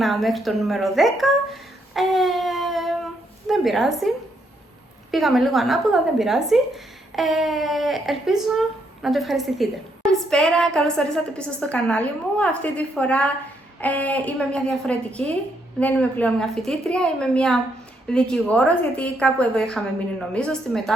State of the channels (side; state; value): both; normal; correlation 0.75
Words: μέχρι το νούμερο 10. Δεν πειράζει, πήγαμε λίγο ανάποδα, δεν πειράζει. Ελπίζω να το ευχαριστηθείτε. Καλησπέρα, καλώς ορίσατε πίσω στο κανάλι μου. Αυτή τη φορά είμαι μια διαφορετική, δεν είμαι πλέον μια φοιτήτρια, είμαι μια δικηγόρος, γιατί κάπου εδώ είχαμε μείνει νομίζω, στη